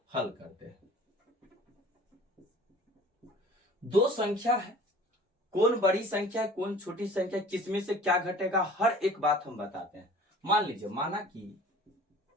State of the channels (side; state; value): both; normal; correlation 0.46